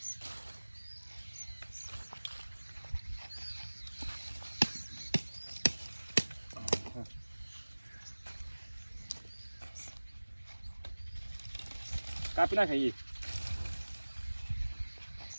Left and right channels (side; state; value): both; inverted; correlation -1.00